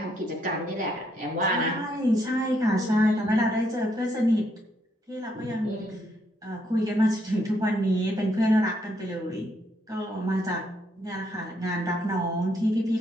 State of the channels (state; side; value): normal; both; correlation 0.74